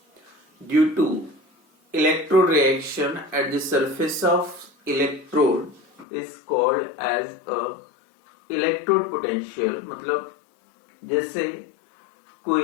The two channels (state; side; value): drops out; right; at 6.1 s